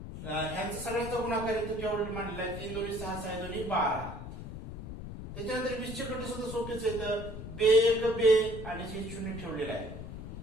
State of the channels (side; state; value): left; noise; rumble, 9 dB below the sound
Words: ह्यांचा सगळ्यांचा गुणाकार इथे केवढा मांडलेला आहे 3 दोन्ही 6 6 दोन्ही 12. त्याच्यानंतर 20 चे घटक सुद्धा सोपेच आहेत बे 1 बे आणि 0 ठेवलेला आहे